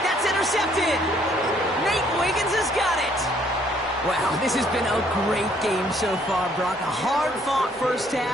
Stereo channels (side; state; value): both; normal; correlation 0.64